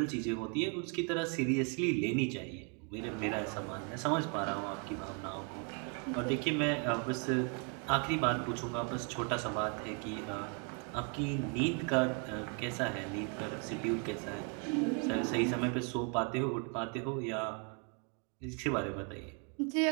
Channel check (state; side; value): quieter; left; 36.7 dB